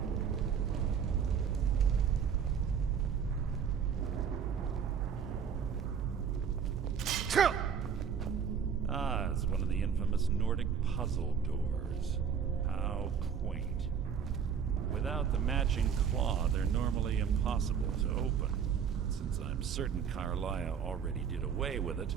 Ah, it's one of the infamous Nordic puzzle doors. How quaint. Without the matching claw, they're normally impossible to open. Since I'm certain Carlia already did away with it,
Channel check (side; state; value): left; quieter; 7.2 dB